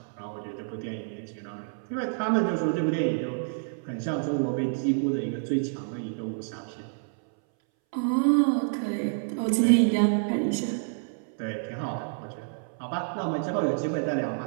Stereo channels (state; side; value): silent; left; 59 dB below the other